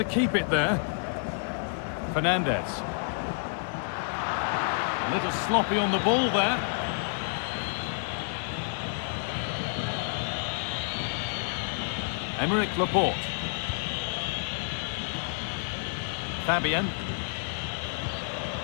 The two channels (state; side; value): silent; right; digital silence